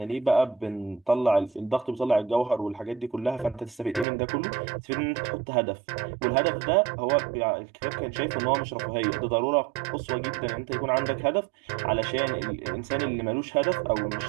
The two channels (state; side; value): drops out; left; at 4.0 s